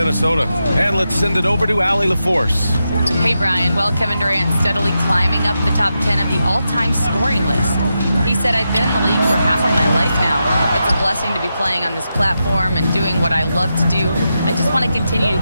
And let's send it over to Allie LaForce. Hey, Brian. Well, Kevin Durant steadily climbing up the top 10 of the all-time scoring list. He said, I've been in the league for half of my life now. It's a blessing to be playing on this platform and doing what I love to do. I just want to continue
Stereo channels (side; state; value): both; inverted; correlation -0.87